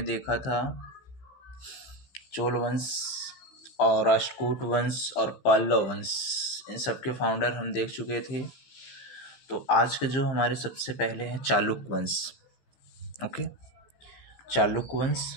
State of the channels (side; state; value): right; late; 15 ms